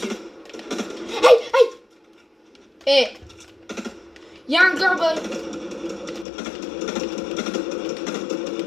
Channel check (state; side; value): drops out; right; at 6.2 s